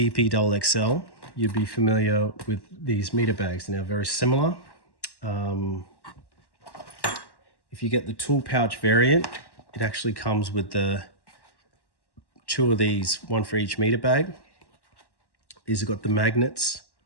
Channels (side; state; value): right; late; 1.1 ms